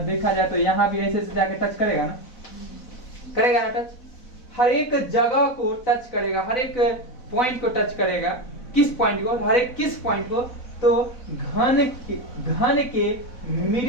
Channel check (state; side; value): late; right; 4.0 ms